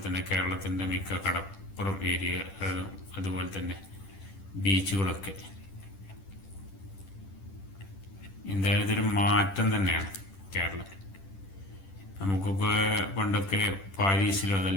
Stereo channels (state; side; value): late; right; 10 ms